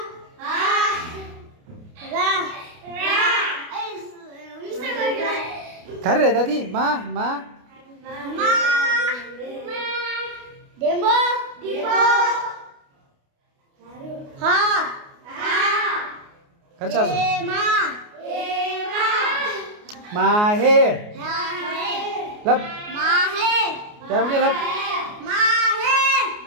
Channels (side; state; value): left; late; 29 ms